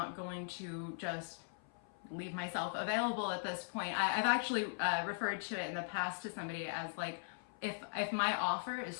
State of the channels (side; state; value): right; silent; 51 dB below the other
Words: going to just leave myself available at this point. I've actually referred to it in the past to somebody as like, if my offer is